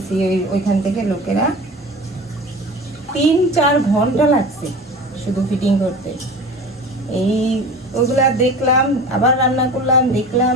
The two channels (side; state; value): both; normal; correlation 0.36